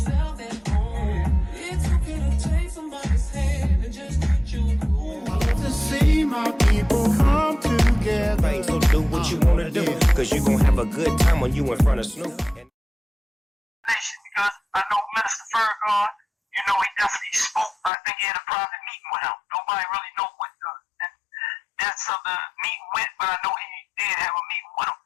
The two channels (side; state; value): right; drops out; at 17.9 s